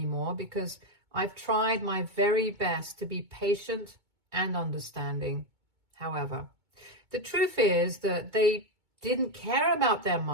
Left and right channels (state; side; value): late; left; 2.2 ms